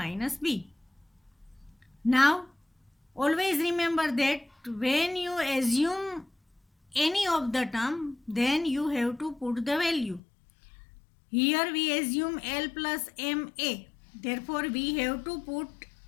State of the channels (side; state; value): right; drops out; at 10.2 s